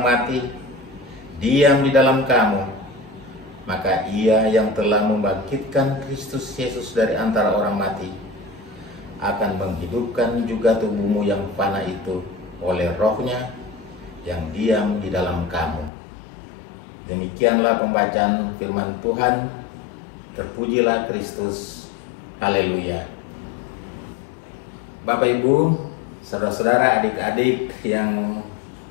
mati diam di dalam kamu, maka Ia yang telah membangkitkan Kristus Yesus dari antara orang mati akan menghidupkan juga tubuhmu yang fana itu oleh rohnya yang diam di dalam kamu. Demikianlah pembacaan firman Tuhan. Terpujilah Kristus. Haleluya. Bapak, Ibu, saudara-saudara, adik-adik yang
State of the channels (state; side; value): drops out; right; at 15.9 s